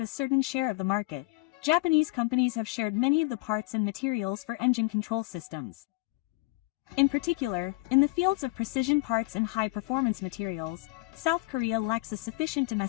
a certain share of the market, Japanese companies have shared many of the parts and materials for engine control systems. In particular, in the fields of precision parts and high-performance materials, South Korea lacks a sufficient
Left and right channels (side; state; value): right; quieter; 21.9 dB